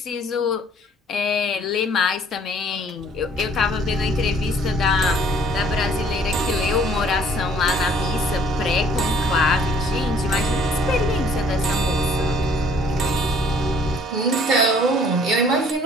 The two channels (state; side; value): normal; both; correlation 0.57